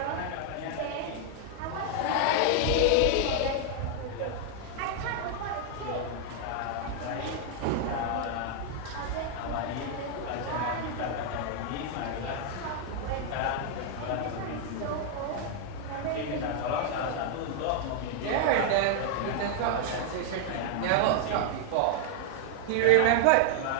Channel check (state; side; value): different; both; correlation 0.00